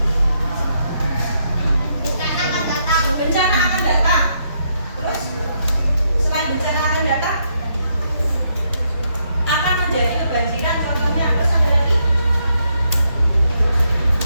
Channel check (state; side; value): inverted; both; correlation -0.77